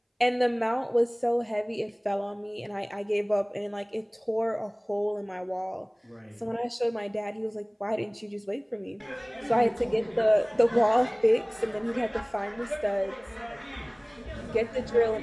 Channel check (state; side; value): identical; both; correlation 1.00